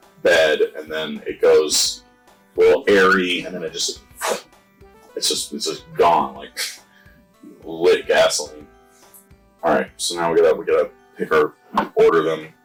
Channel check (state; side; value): identical; both; correlation 1.00